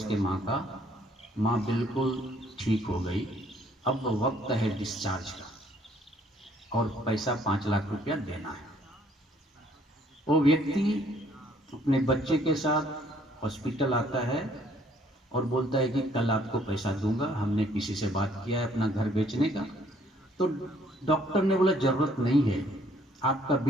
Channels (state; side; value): normal; both; correlation 0.63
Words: माँ का, माँ बिल्कुल ठीक हो गई। अब वक्त है डिस्चार्ज का और पैसा 5 लाख रुपया देना है। वो व्यक्ति अपने बच्चे के साथ हॉस्पिटल आता है और बोलता है कि कल आपको पैसा दूंगा, हमने किसी से बात किया है अपना घर बेचने का। तो डॉक्टर ने बोला जरूरत नहीं है, आपका